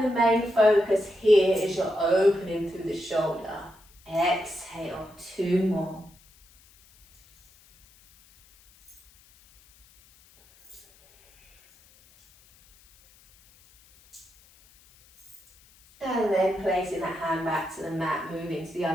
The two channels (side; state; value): left; noise; hiss, 28 dB below the sound